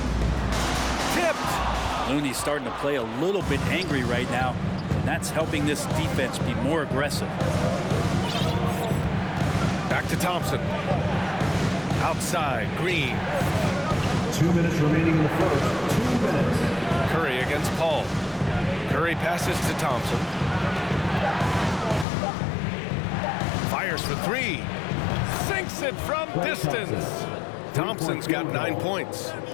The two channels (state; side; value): drops out; right; at 22.1 s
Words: Tipped. Looney's starting to play a little bit angry right now, and that's helping this defense be more aggressive. Back to Thompson. Outside, Green. 2 minutes remaining in the first. 2 minutes. Curry against Paul. Curry passes to Thompson. Fires for 3. Sinks it from distance. Thompson's got 9 points.